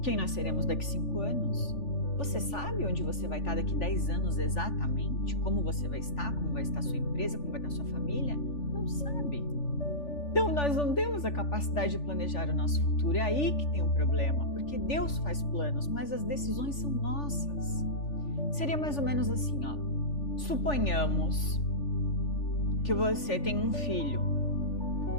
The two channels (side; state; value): right; late; 3.4 ms